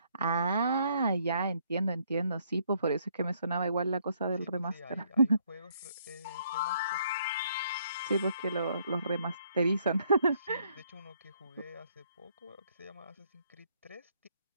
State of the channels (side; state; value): both; inverted; correlation -0.69